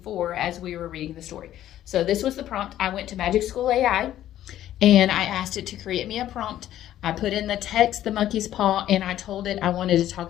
for as we were reading the story. So this was the prompt. I went to Magic School AI and I asked it to create me a prompt. I put in the text, the monkey's paw, and I told it I wanted to talk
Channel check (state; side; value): quieter; right; 12.4 dB